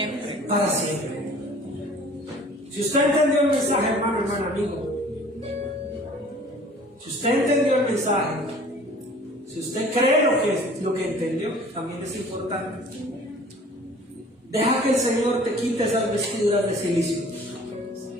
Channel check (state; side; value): normal; both; correlation 0.49